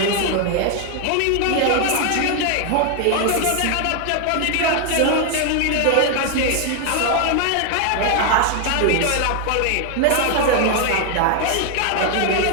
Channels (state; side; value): different; both; correlation 0.00